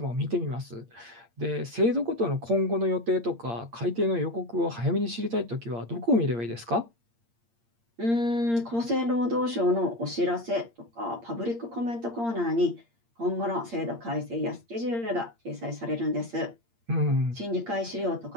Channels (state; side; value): late; left; 8.6 ms